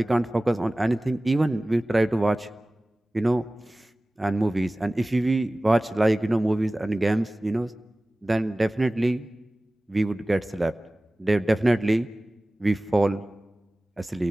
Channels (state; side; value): normal; both; correlation 0.98